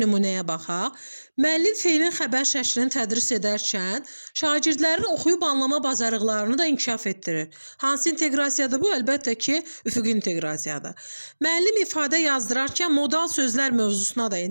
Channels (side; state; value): both; inverted; correlation -1.00